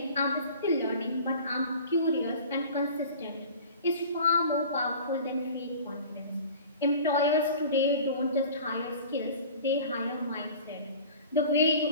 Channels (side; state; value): both; inverted; correlation -0.42